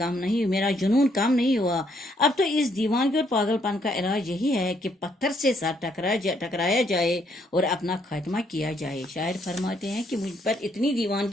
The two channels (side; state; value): both; normal; correlation 0.71